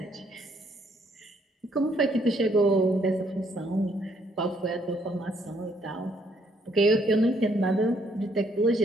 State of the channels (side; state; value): both; normal; correlation 0.69